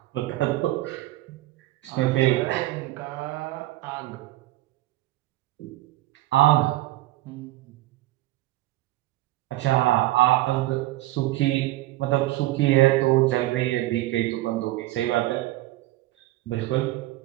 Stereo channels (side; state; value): left; quieter; 17.2 dB